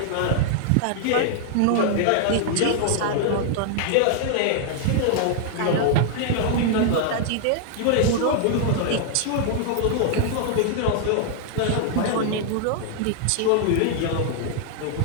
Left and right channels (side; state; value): both; different; correlation -0.01